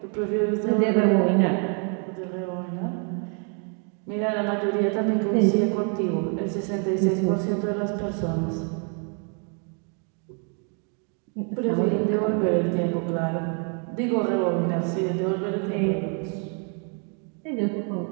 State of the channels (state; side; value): quieter; left; 39.6 dB